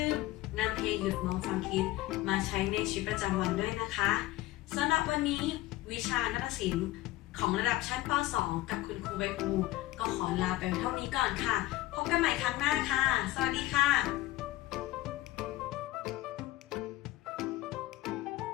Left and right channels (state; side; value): quieter; right; 17.1 dB